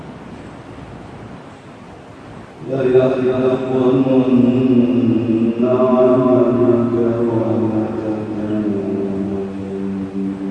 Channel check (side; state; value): both; identical; correlation 1.00